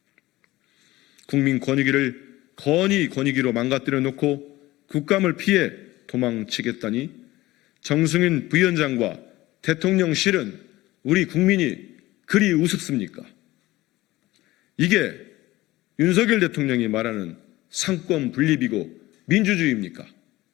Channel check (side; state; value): right; quieter; 18.0 dB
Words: 국민 권익위를 건의 권익위로 망가뜨려 놓고 국감을 피해 도망치겠다니 정승윤 부위원장과 대통령실은 우리 국민이 그리 우습습니까? 이게 윤석열 대통령이 말하는 상권 분립이고 민주주의입니까?